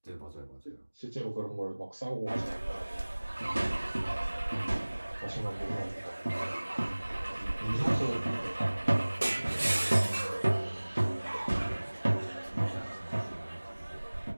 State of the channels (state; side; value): inverted; both; correlation -1.00